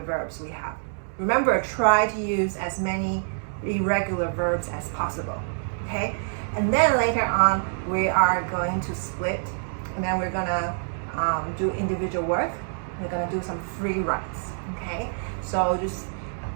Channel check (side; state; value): left; silent; 61 dB below the other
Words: verbs we have. Remember, try to use as many irregular verbs as possible, okay? And then later on, we are going to split, and then we're gonna do individual work. We're gonna do some free writes, okay? So just